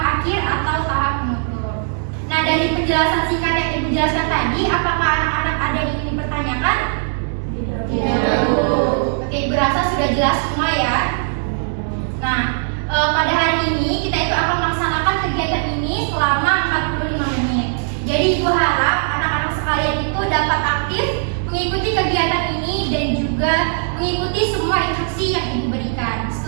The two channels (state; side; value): silent; left; 66 dB below the other